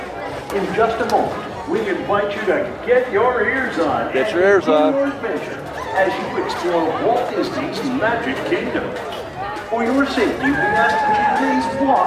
In just a moment, we invite you to get your ears on. Get your ears on. Your adventure as you explore Walt Disney's Magic Kingdom. For your safety, we ask that you please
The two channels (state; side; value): identical; both; correlation 1.00